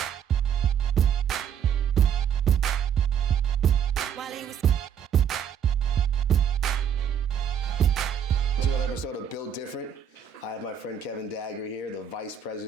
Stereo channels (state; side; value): quieter; left; 8.5 dB